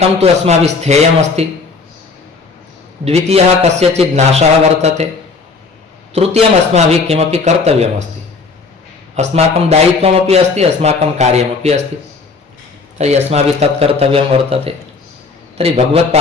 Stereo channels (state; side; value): quieter; right; 4.4 dB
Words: तु अस्माभिः स्थेयमस्ति, द्वितीयः कस्यचित् नाशः वर्तते, तृतीयम् अस्माभिः किमपि कर्तव्यमस्ति, अस्माकं दायित्वमपि अस्ति, अस्माकं कार्यमपि अस्ति। तर्हि अस्माभिः तत् कर्तव्यं वर्तते। तर्हि